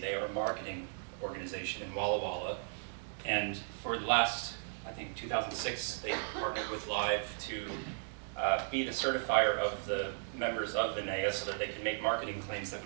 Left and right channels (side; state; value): left; silent; digital silence